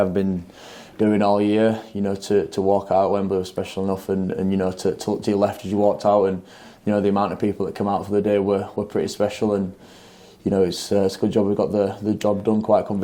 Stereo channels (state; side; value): identical; both; correlation 1.00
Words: been doing all year. To walk out at Wembley was special enough, and to look to your left as you walked out, and the amount of people that come out for the day were pretty special. And it's a good job we got the job done quite